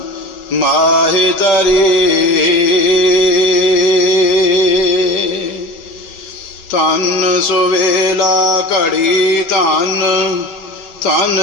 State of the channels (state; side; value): late; right; 5.2 ms